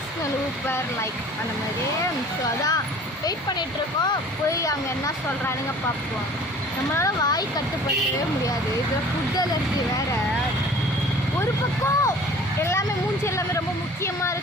ஊப்பர் லைக் அந்த மாதிரியே. ஸோ அதான் வெயிட் பண்ணிகிட்ருக்கோம். போய் அங்கே என்ன சொல்கிறானுங்க பார்ப்போம். நம்மளால் வாய் கட்டுப்படுத்தவே முடியாது. இதில் ஃபுட் அலர்ஜி வேறு. ஒரு பக்கம் எல்லாமே மூஞ்சி எல்லாமே ரொம்ப முக்கியமாக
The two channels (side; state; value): both; normal; correlation 0.47